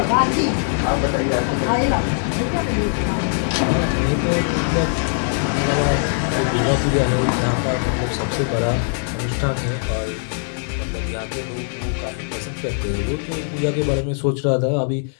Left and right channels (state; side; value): silent; right; digital silence